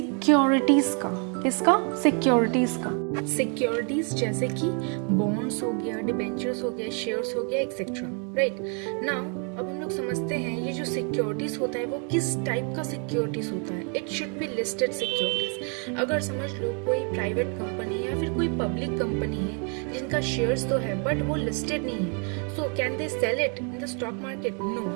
का. किसका? सिक्योरिटीज का. सिक्योरिटीज जैसे कि बॉन्ड्स हो गया, डिबेंचर्स हो गया, शेयर्स हो गया, एक्सेट्रा. राइट. नाउ अब हम लोग समझते हैं ये जो सिक्योरिटीज होता है वो किस टाइप का सिक्योरिटीज होता है. It should be listed securities. अगर समझ लो कोई प्राइवेट कंपनी या फिर कोई पब्लिक कंपनी है जिनका शेयर्स तो है बट वो लिस्टेड नहीं है, so can they sell it in the stock market? No,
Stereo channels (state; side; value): quieter; left; 39.0 dB